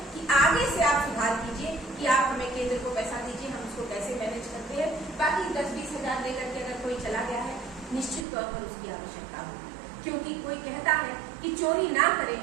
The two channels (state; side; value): drops out; left; at 8.2 s